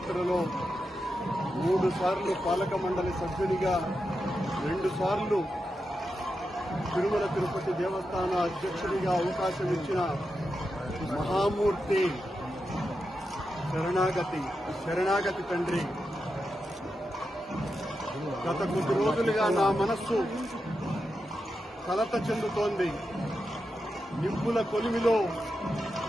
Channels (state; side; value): normal; both; correlation 0.88